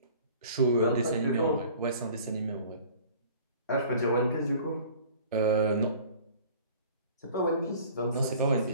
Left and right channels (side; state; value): both; inverted; correlation -0.48